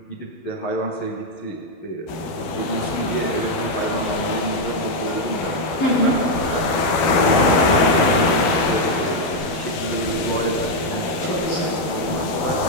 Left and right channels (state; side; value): late; right; 12 ms